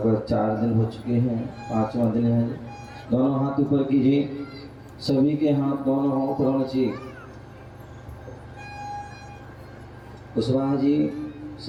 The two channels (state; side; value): identical; both; correlation 1.00